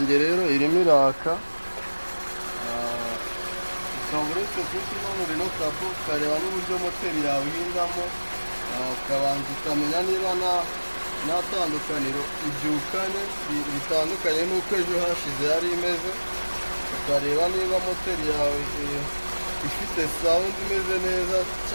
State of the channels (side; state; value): both; inverted; correlation -1.00